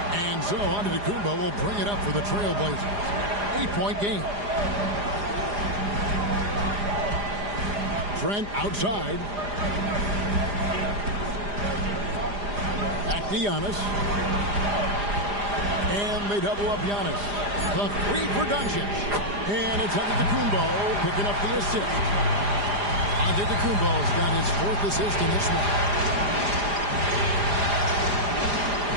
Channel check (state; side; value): late; left; 4.9 ms